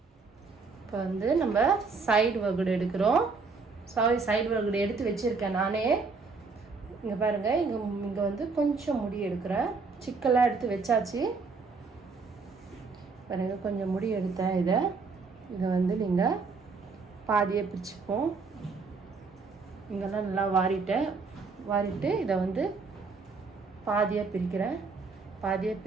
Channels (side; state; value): left; quieter; 4.5 dB